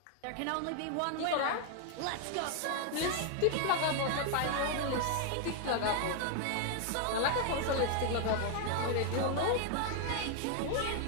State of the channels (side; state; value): both; different; correlation 0.00